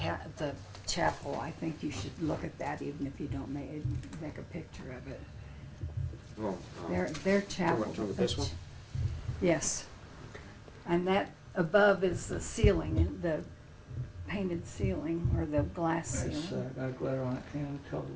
chapel. I think you should look at that even if you don't make a picture of it. Well, Their chapel. talking about this one? Yes. And that above is the ceiling, the painted ceiling or the glass It's ceiling. got a glitter on it and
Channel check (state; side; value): identical; both; correlation 1.00